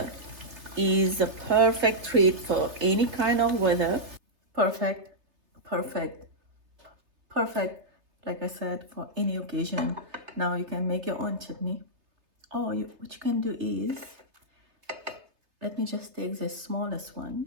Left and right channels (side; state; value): left; late; 3.3 ms